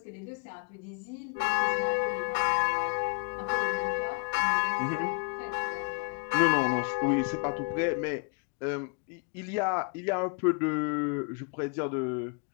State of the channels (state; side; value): quieter; right; 34.3 dB